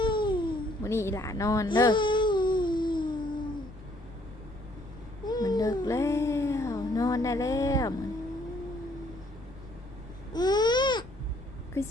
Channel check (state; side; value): noise; left; rumble, 18 dB below the sound